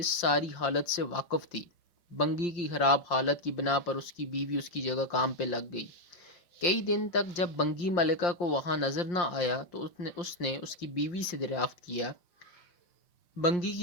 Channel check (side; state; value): right; late; 5.7 ms